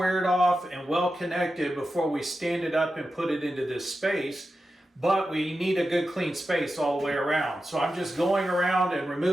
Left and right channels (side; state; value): both; normal; correlation 0.91